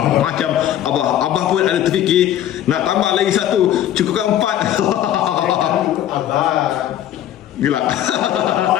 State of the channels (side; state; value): right; quieter; 11.6 dB